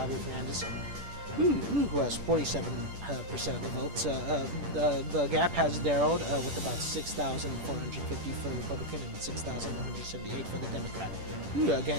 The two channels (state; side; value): late; left; 10 ms